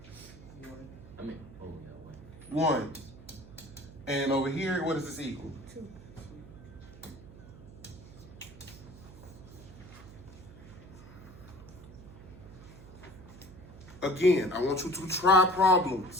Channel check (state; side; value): noise; right; hum, 17 dB below the sound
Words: 1. And over here, what does this equal? 2. Again, I want you to try